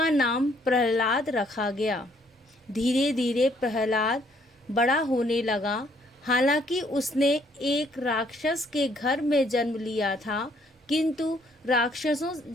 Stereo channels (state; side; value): normal; both; correlation 0.66